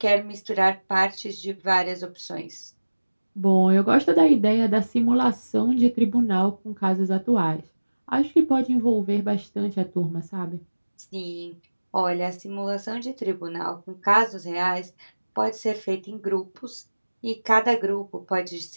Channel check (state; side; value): inverted; both; correlation -1.00